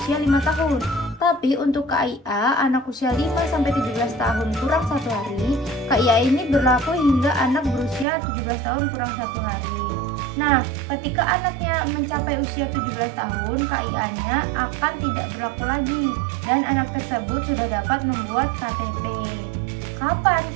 5 tahun. Tapi untuk KIA anak usia 5-17 tahun kurang 1 hari, KIA ini berlaku hingga anak berusia 17 tahun kurang 1 hari. Nah, ketika anaknya mencapai usia 17 tahun, KIA-nya akan tidak berlaku lagi dan anak tersebut sudah dapat membuat KTP. Kapan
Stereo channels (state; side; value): drops out; left; at 8.1 s